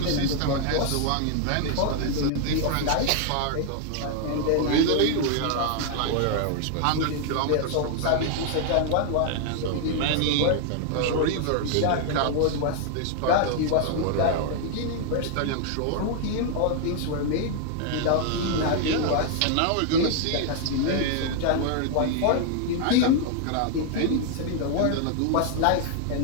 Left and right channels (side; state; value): both; different; correlation 0.00